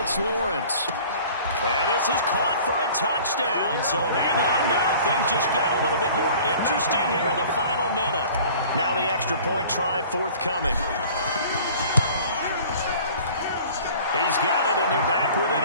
Lawrence. And this is caught for a touchdown. So hang on now. Things just got a little bit more interesting here in the final minute. Now the extra point try forthcoming. He's got it, and they're back within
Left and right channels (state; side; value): inverted; both; correlation -0.47